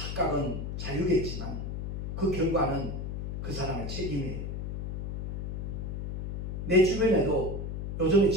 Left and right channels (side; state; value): left; noise; hum, 4 dB below the sound